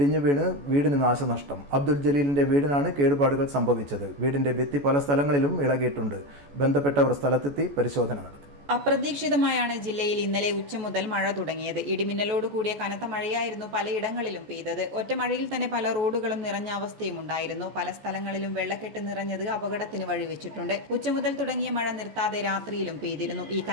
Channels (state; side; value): late; left; 14 ms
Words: വീണ് വീടിന് നാശനഷ്ടം. അബ്ദുൽ ജലീലിന്റെ വീടിനാണ് കേടുപാടുകൾ സംഭവിച്ചത്. വീടിന്റെ ഭിത്തി പല സ്ഥലങ്ങളിലും ഇളകിയിട്ടുണ്ട്. ബന്ധപ്പെട്ടവർ സ്ഥലത്തെത്തി പരിശോധന നടത്തി. അപ്രതീക്ഷിതമായാണ് ജില്ലയിൽ ഇന്നലെ ഉച്ച മുതൽ മഴ തുടങ്ങിയത്. ഇടിമിന്നലോട് കൂടിയ കനത്ത മഴയായിരുന്നു പലയിടങ്ങളിലും പെയ്തത്. ഒറ്റ മഴയിൽ തന്നെ പല റോഡുകളും നിറഞ്ഞ അവസ്ഥയും ഉണ്ടായിരുന്നു. പല സ്ഥലങ്ങളിലും വെള്ളക്കെട്ട് നിറഞ്ഞത് അപകടത്തിന് വഴിവെച്ചിട്ടുണ്ട്. ഉച്ച മുതൽ തുടങ്ങിയ മഴ നിർത്താതെ രാത്രിയിലും പെയ്തിരുന്നു. ഈ